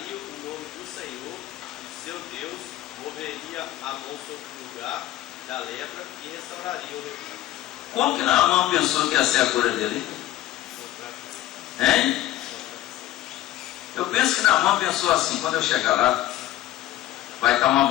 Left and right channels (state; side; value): quieter; right; 14.3 dB